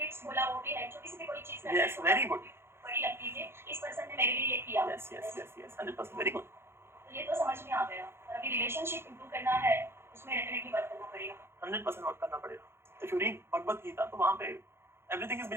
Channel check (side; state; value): left; late; 0.12 ms